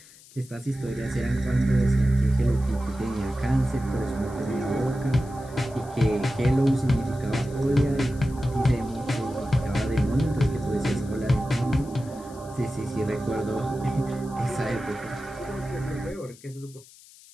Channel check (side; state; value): left; noise; hiss, 23 dB below the sound